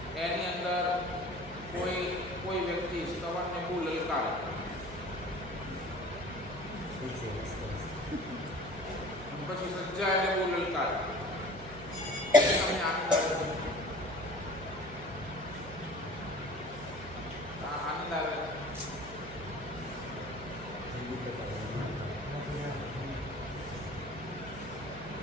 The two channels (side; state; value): right; noise; hum, 14 dB below the sound